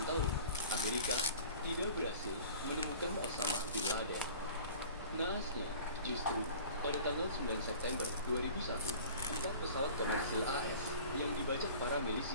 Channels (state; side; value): inverted; both; correlation -0.44